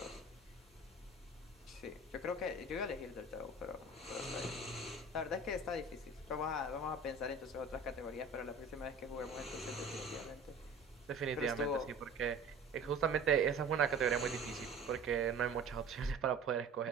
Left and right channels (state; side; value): quieter; left; 3.3 dB